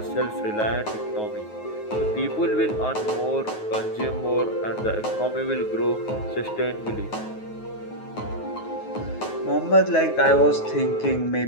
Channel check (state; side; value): late; right; 9.4 ms